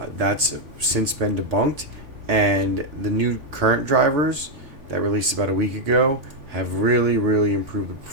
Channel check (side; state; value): left; late; 3.5 ms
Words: That's since been debunked, and the new current drivers that released about a week ago have really improved the